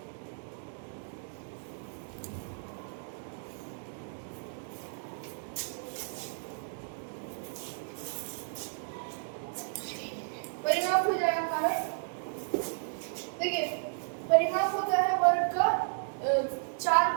हो जाएगा हमारा, देखिए परिमाप होता है वर्ग का 4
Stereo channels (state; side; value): silent; left; digital silence